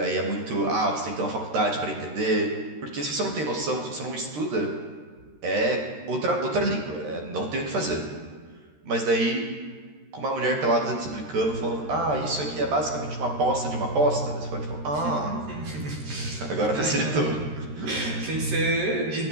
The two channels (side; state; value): left; late; 13 ms